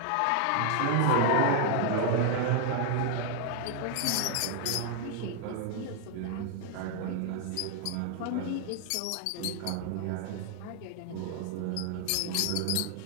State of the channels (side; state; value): both; different; correlation 0.00